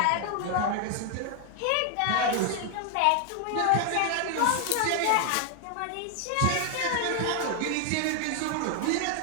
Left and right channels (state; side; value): different; both; correlation 0.00